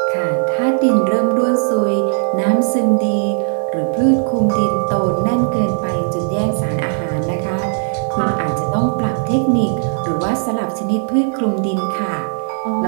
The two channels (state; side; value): silent; left; 64 dB below the other